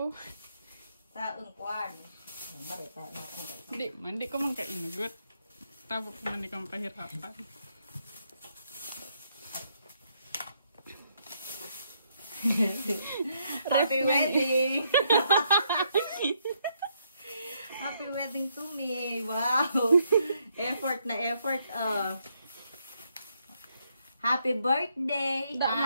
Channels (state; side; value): inverted; both; correlation -0.74